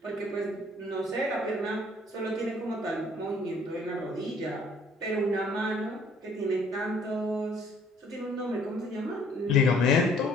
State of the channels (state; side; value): normal; both; correlation 0.59